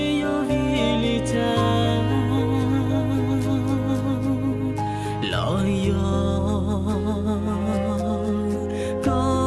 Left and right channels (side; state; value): both; identical; correlation 1.00